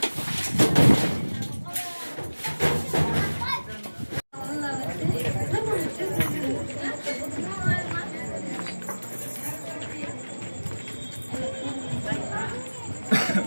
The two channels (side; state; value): both; inverted; correlation -1.00